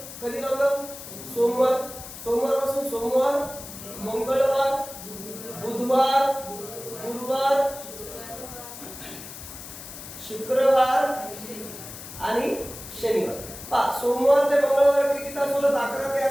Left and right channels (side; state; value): left; noise; hiss, 13 dB below the sound